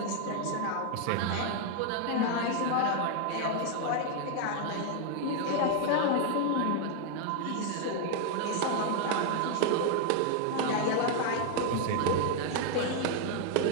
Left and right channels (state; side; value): different; both; correlation 0.00